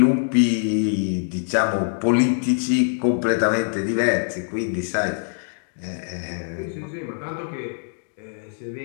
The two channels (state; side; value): silent; right; digital silence